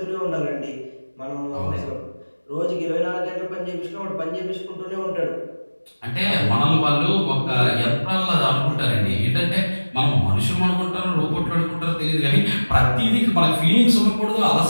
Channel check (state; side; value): inverted; both; correlation -1.00